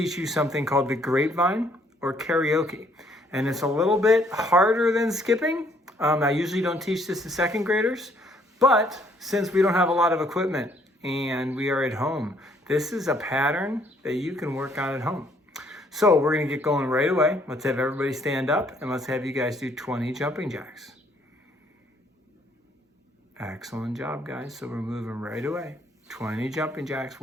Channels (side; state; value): both; normal; correlation 0.65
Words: you something called the grapevine or karaoke. And it's a little bit harder than skipping. I usually don't teach this to second graders, but since we don't have a lot of equipment and we are at home, this is a pattern that you can work on at home. So we're gonna get going right away. Let's have everybody stand up and let's have you guys do 20 jumping jacks. Excellent job, guys. So we're moving right away. 20 jumping jacks.